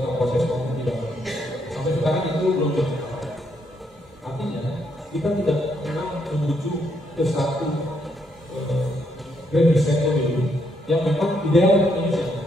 proses maupun tidak. Sampai sekarang itu belum berjalan. Artinya kita tidak pernah menuju ke satu grand design pemilu yang memang ideal untuk Indonesia.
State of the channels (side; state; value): both; normal; correlation 0.75